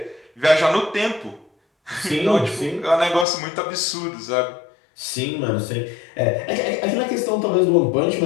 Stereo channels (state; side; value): drops out; right; at 3.2 s